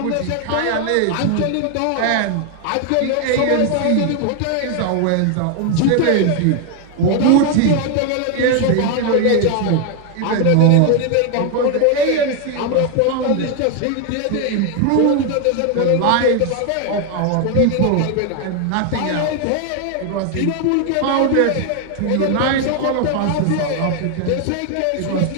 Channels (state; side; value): different; both; correlation 0.01